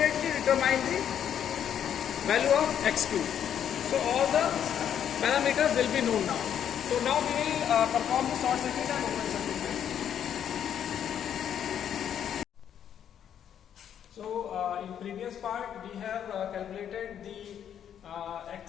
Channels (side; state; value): right; quieter; 9.3 dB